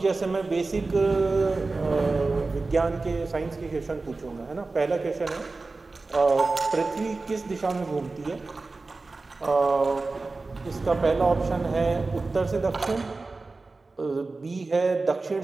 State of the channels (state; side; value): quieter; left; 3.6 dB